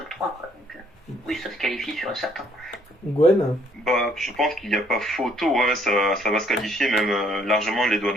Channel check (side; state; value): both; normal; correlation 0.65